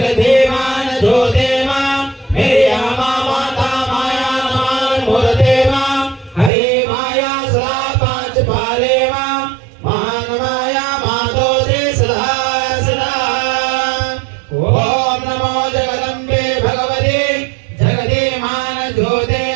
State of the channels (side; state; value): left; drops out; at 6.5 s